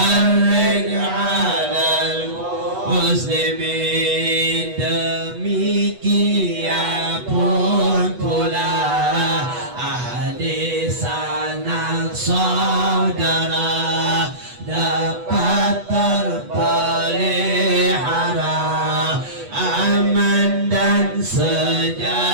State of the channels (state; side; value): late; left; 8.2 ms